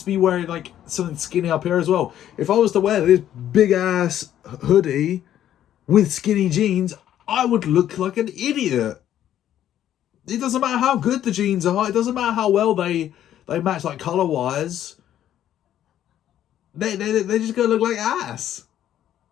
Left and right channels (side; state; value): right; quieter; 11.4 dB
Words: be wearing like something skinny up here as well. If I was to wear this big ass hoodie with skinny jeans, I would look like an idiot. It doesn't matter how good the jeans are. It doesn't matter how well they match like color wise. They're just gonna look like ass.